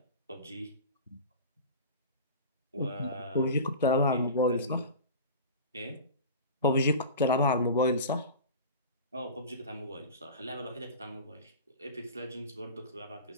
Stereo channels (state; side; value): inverted; both; correlation -0.33